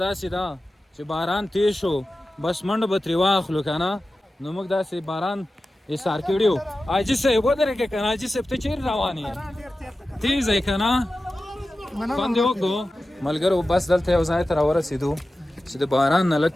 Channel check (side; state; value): both; normal; correlation 0.94